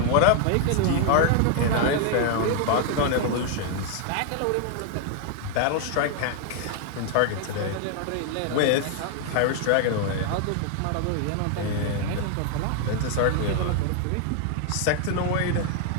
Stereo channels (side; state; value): both; different; correlation 0.00